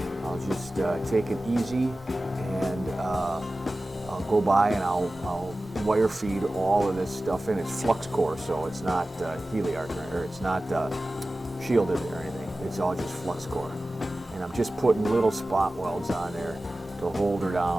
I'll just take it easy, and I'll go by and I'll wire feed all of this stuff in. It's flux core, so it's not heliarc, or it's not shielded or anything. It's all just flux core. And I'm just putting little spot welds on there to hold her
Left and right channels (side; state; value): both; normal; correlation 0.96